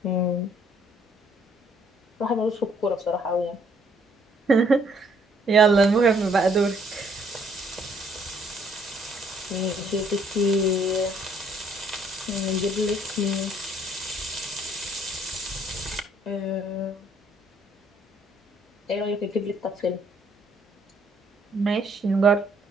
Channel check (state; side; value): normal; both; correlation 0.65